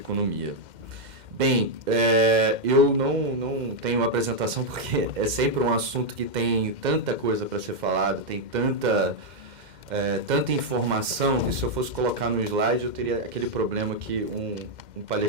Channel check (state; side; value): late; left; 2.1 ms